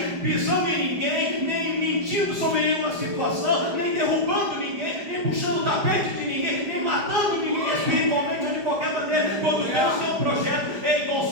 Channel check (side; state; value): left; late; 4.9 ms